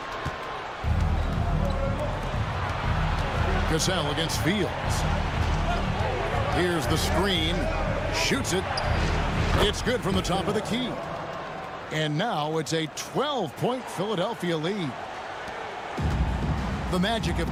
Cassell against Fields. Here's the screen. Shoots it. It's good from the top of the key. And now it's a 12-point Philadelphia lead. The Magic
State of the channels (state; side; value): identical; both; correlation 1.00